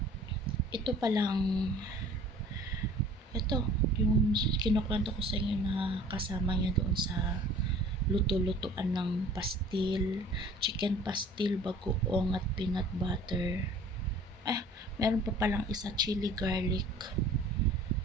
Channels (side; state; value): both; normal; correlation 0.49